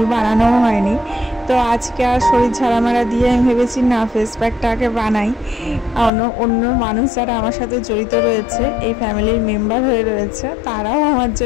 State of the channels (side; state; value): right; drops out; at 6.1 s